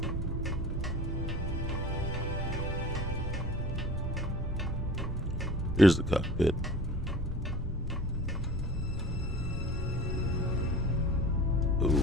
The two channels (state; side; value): normal; both; correlation 0.41